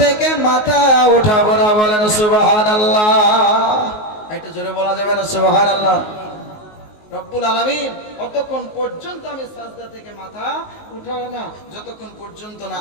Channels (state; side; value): late; right; 19 ms